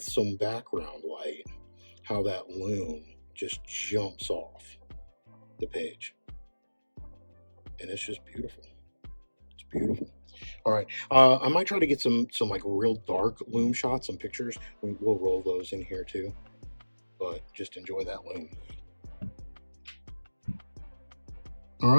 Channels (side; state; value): both; inverted; correlation -1.00